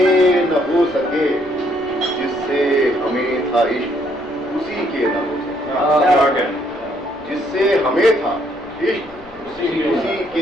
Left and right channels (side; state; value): left; noise; rumble, 24 dB below the sound